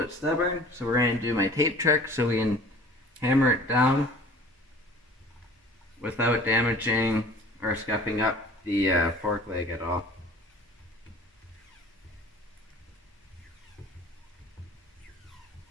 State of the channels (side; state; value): both; normal; correlation 0.47